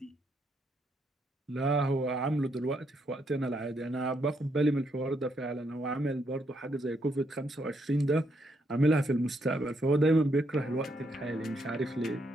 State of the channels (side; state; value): both; normal; correlation 0.76